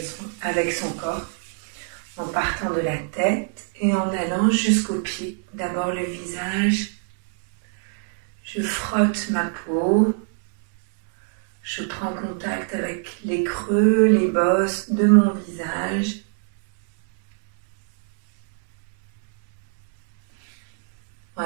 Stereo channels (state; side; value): silent; left; digital silence